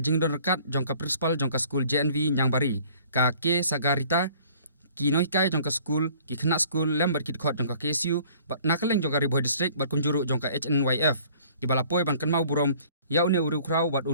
jingdon rekat jong ka principal jong ka skul JNV Nyangbari ka ke sagarita Kynmaw jong ka skul ki khna skul lembar kit khot jong ka KSU bat nakaleng jong ka Bhoi district bat kunjuru jong ka HNYF di balapoi ban Kynmaw burom ya une uru krau bat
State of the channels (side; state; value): both; inverted; correlation -0.54